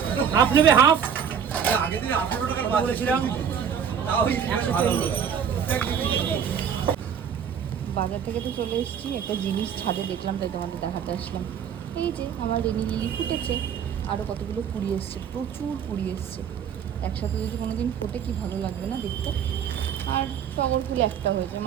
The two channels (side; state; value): left; quieter; 7.9 dB